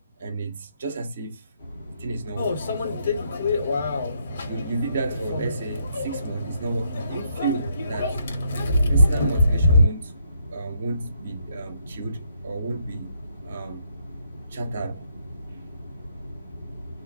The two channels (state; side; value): inverted; both; correlation -0.74